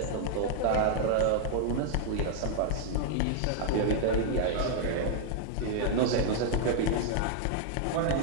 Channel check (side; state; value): both; different; correlation -0.01